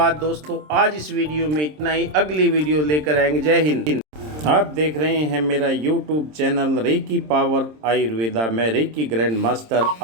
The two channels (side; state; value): left; late; 26 ms